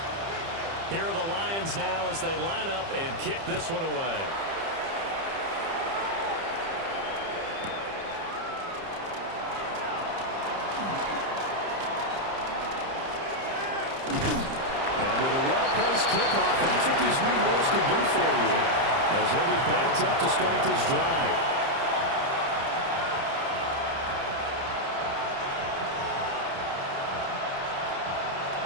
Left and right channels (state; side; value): late; left; 30 ms